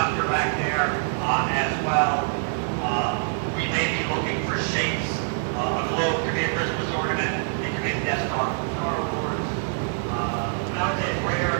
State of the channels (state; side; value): silent; left; digital silence